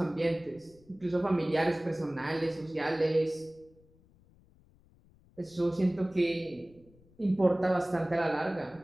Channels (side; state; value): left; noise; rumble, 29 dB below the sound